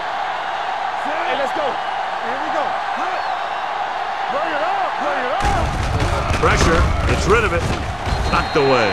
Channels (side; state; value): both; identical; correlation 1.00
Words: Hey, let's go. Here we go. Bring it up. Bring it up. Pressure. Gets rid of it. Knocked away.